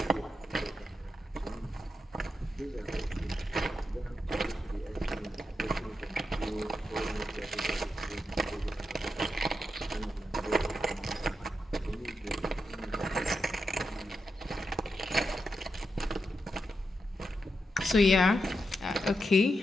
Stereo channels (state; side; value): normal; both; correlation 0.86